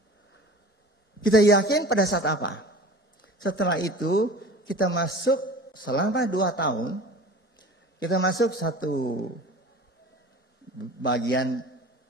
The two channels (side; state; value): both; normal; correlation 0.40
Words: Kita yakin pada saat apa? Setelah itu kita masuk selama 2 tahun. Kita masuk satu bagian